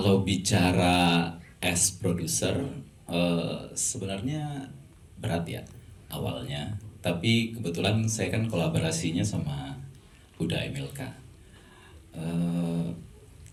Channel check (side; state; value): both; identical; correlation 1.00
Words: bicara as produser, sebenarnya berat ya awalnya. Tapi kebetulan saya kan kolaborasinya sama Huda Emilka.